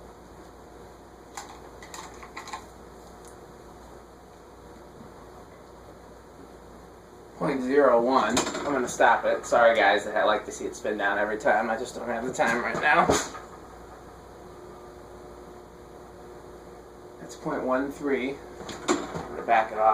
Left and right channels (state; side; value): identical; both; correlation 1.00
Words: .01. I'm going to stop it. Sorry guys that I like to see it spin down every time. I just don't have the time right now. That's 0.13. I'm going to back it